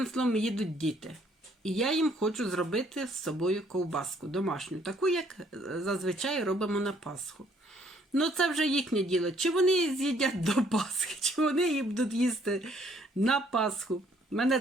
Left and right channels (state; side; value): normal; both; correlation 0.64